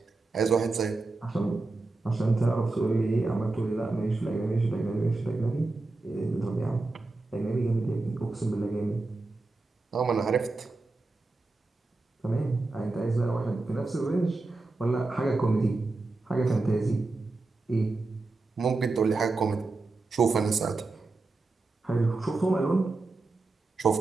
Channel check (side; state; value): left; quieter; 3.4 dB